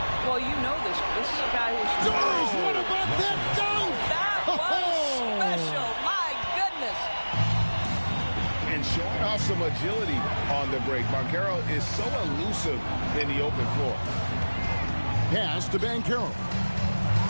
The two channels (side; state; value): both; inverted; correlation -1.00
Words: Well, you know this. This is a guy who's... Doris, what about that dunk? That was special. My goodness. And showing off some agility on the break. Banchero is so elusive in the open floor. Pass to Banchero.